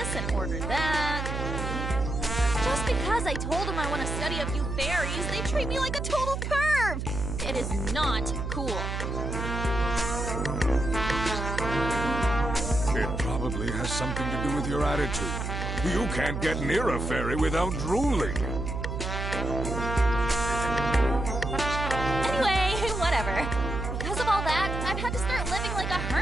and order that. Just because I told them I want to study a few fairies, they treat me like a total perv. It is not cool. It probably has something to do with your attitude. You can't get near a fairy without drooling. Anyway, whatever. Because of all that, I've had to start living like a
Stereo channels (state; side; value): noise; right; hum, 3 dB below the sound